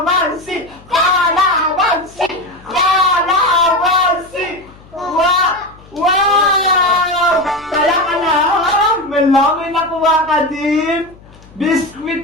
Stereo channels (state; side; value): noise; left; hum, 24 dB below the sound